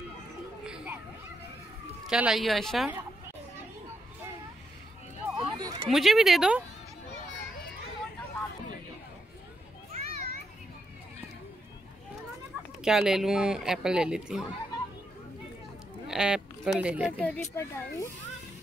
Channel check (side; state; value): both; normal; correlation 0.82